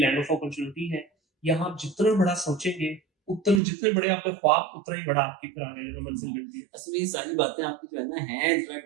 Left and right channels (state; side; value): drops out; left; at 3.6 s